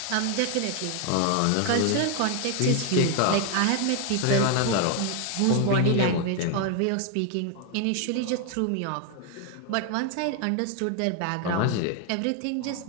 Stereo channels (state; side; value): different; both; correlation 0.01